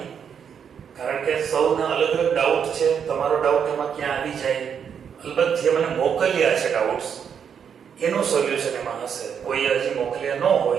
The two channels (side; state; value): left; quieter; 7.5 dB